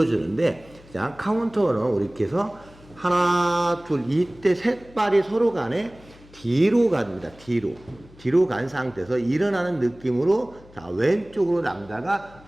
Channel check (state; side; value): noise; left; hum, 24 dB below the sound